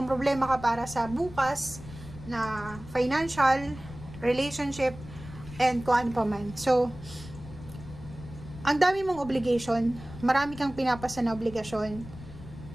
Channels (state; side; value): noise; left; rumble, 15 dB below the sound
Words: problema ka para sa bukas na financial, relationship, and kung ano pa man. So, ang dami mong obligation, marami kang pinapasa na obligasyon,